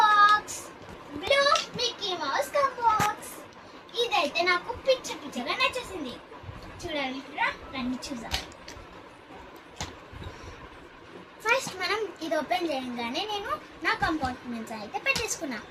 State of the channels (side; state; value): both; identical; correlation 1.00